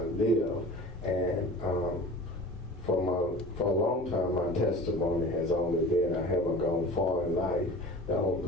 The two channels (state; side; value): normal; both; correlation 0.39